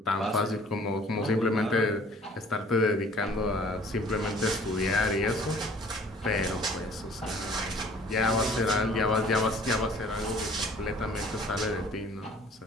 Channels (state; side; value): normal; both; correlation 0.53